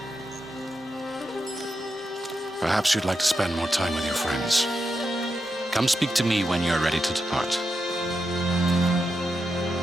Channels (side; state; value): both; normal; correlation 0.86